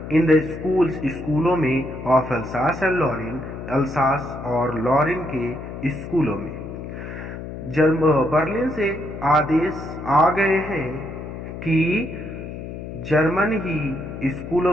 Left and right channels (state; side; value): noise; left; hum, 9 dB below the sound